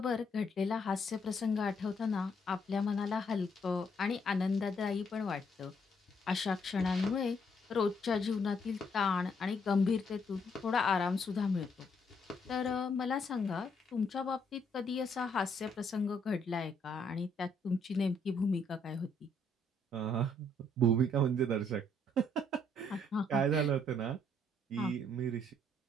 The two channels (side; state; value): both; normal; correlation 0.70